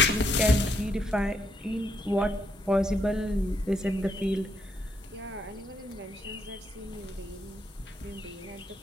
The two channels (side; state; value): both; normal; correlation 0.75